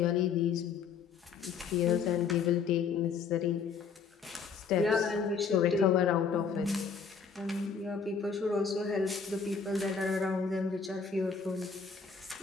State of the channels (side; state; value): right; quieter; 5.9 dB